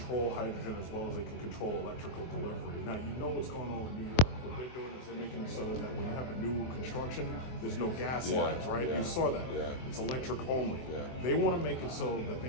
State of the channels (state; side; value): late; right; 24 ms